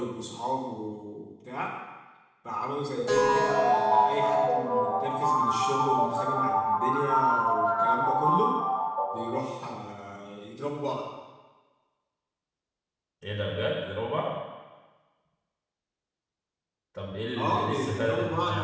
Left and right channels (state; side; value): identical; both; correlation 1.00